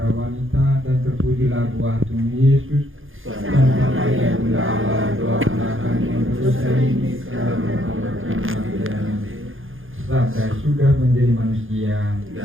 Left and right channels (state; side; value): late; left; 0.59 ms